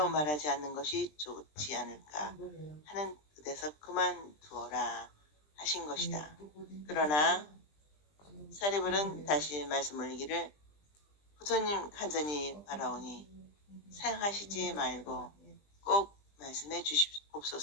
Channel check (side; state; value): right; late; 20 ms